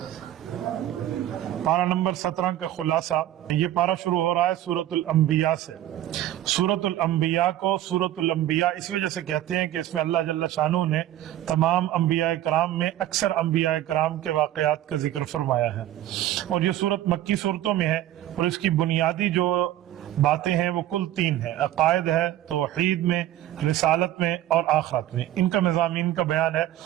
پارہ نمبر 17 کا خلاصہ۔ یہ پارہ شروع ہو رہا ہے سورۃ الانبیاء سے۔ سورۃ الانبیاء کو سورۃ الانبیاء اس وجہ سے کہتے ہیں کہ اس میں اللہ جل شانہ نے تمام انبیاء کرام میں اکثر انبیاء کرام کے واقعات کا ذکر فرمایا ہے، اور یہ سورت مکی صورتوں میں ہے، اور اس کی بنیادی جو باتیں ہیں وہ کل 3 ہیں۔ عقائد ہے، توحید میں، رسالت میں اور آخرت میں، ان کا مضامین کا بیان ہے،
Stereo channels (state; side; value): quieter; left; 13.1 dB